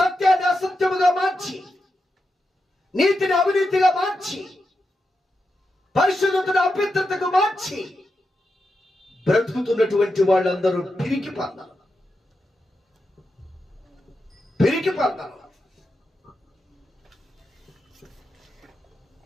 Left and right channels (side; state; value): both; normal; correlation 0.87